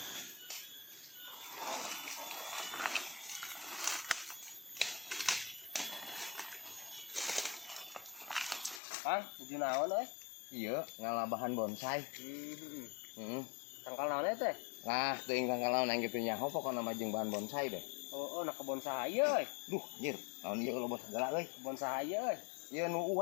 Kang, tujuh naon Iya, ngalah bahan bonsai. Tangkal naon teh? Nah, teuing tangkal naon kitu nya. Pokona mah jeung bahan bonsai deh. Oh, nak kebon sahaya Duh, anjir, naon ieu loba segala euy. Kebon sahaya Ieu nu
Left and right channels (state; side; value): drops out; right; at 8.8 s